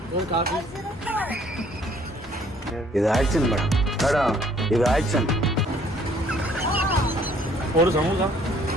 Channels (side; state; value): both; normal; correlation 0.60